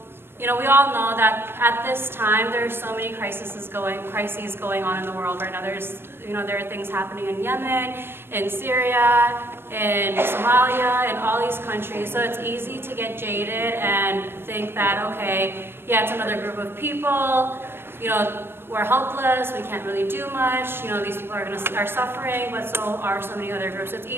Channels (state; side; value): late; left; 0.11 ms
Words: we all know that at this time there are so many crises going on in the world right now. There are things happening in Yemen, in Syria, in Somalia, in all these countries. So it's easy to get jaded and think that, okay, yeah, it's another group of people, we're helpless, we can't really do much, these people are suffering, but so are so many other groups. So it's